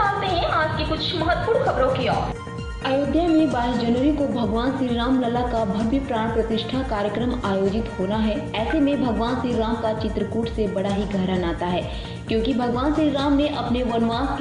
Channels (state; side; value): identical; both; correlation 1.00